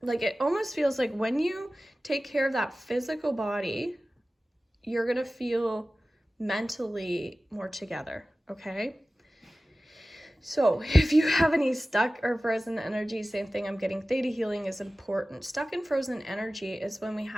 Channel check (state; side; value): normal; both; correlation 0.96